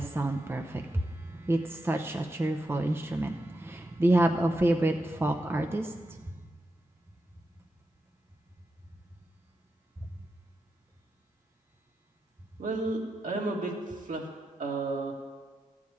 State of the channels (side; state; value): both; normal; correlation 0.87